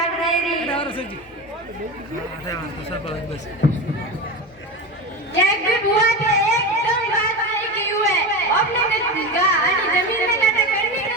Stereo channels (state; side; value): normal; both; correlation 0.23